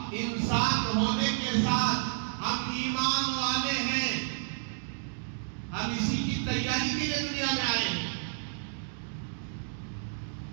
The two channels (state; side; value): silent; left; digital silence